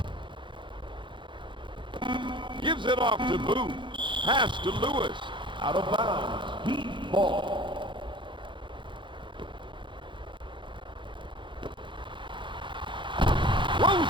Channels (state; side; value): late; left; 0.23 ms